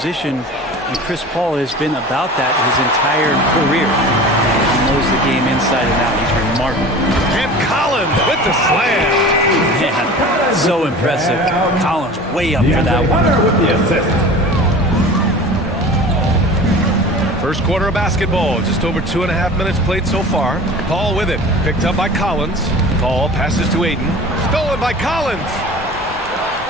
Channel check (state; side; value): normal; both; correlation 0.38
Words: and Chris Paul has been about that his entire career. He knows the game inside and out. He's remarkable. And Collins with the slam. Man, so impressive. Collins way up for that one. With the assist. First quarter of basketball, just over 2.5 minutes played so far. Paul with it, picked up by Collins. Paul passes to Ayton, stolen by Collins.